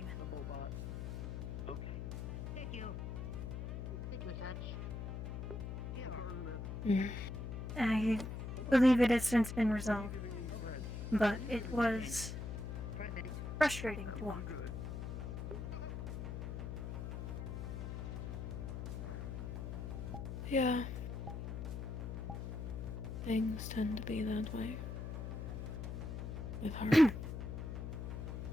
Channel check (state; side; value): noise; left; hum, 5 dB below the sound